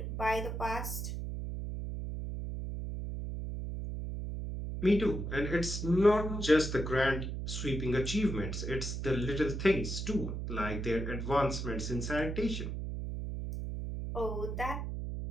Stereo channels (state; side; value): noise; right; hum, 4 dB below the sound